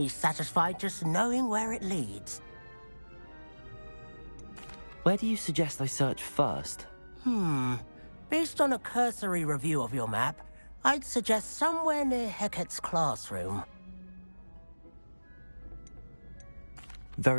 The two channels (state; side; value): inverted; both; correlation -1.00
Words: satisfied just knowing where it leads. Where do you suggest I search first? Based on a cursory review of your map, I'd suggest somewhere near Hecat's classroom.